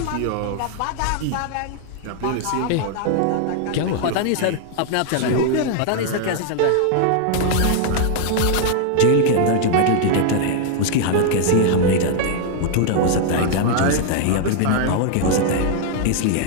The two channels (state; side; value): different; both; correlation 0.00